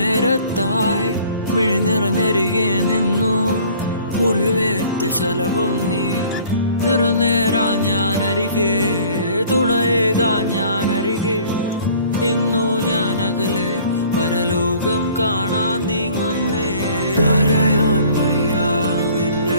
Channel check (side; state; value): both; inverted; correlation -0.52